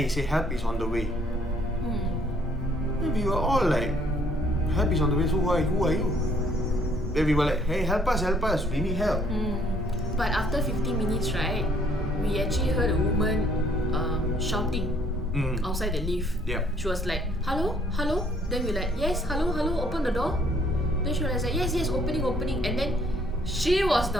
he said, "Help is on the way." Then we were all like, "Help is on the way. So who are you?" Then we were like, "Hey, help us! We need help." But after 15 minutes, right, we actually heard a woman shouting outside the lift. Yeah. She was like, "Hello, hello." Then we like, "Yes, hello, open the door." Then she was like, "Yes, opening." And then she was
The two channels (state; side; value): normal; both; correlation 0.64